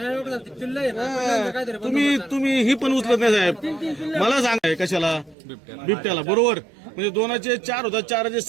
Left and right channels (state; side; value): drops out; left; at 5.4 s